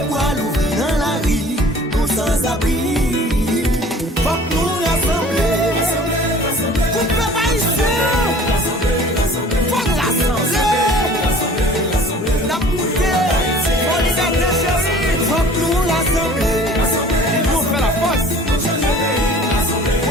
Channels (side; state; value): both; normal; correlation 0.48